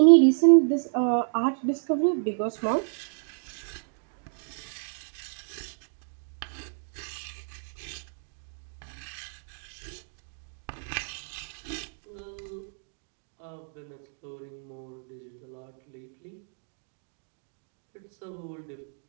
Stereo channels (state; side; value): silent; left; digital silence